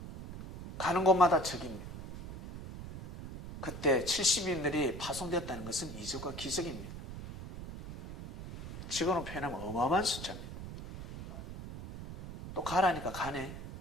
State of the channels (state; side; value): noise; right; rumble, 10 dB below the sound